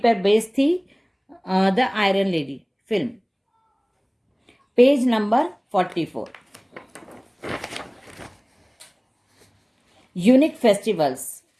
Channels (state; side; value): identical; both; correlation 1.00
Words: बेस्ड थी the iron lady film. Page number 44. Unique festivals.